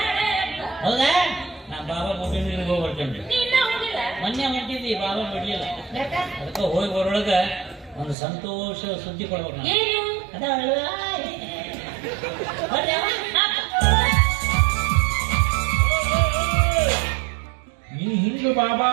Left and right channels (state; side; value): drops out; left; at 8.2 s